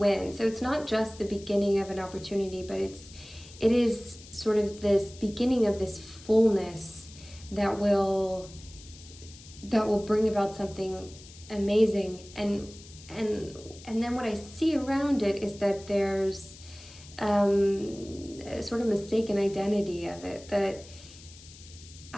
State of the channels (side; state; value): left; noise; hiss, 19 dB below the sound